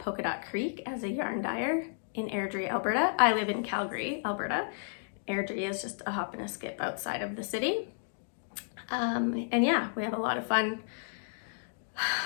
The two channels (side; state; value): right; silent; digital silence